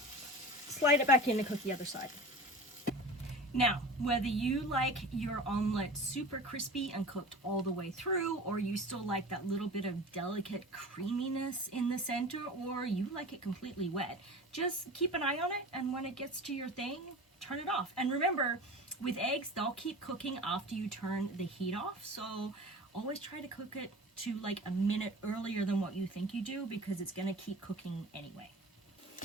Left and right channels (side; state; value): both; normal; correlation 0.36